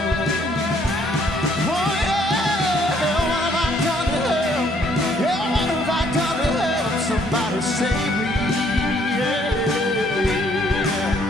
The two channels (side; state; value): both; normal; correlation 0.65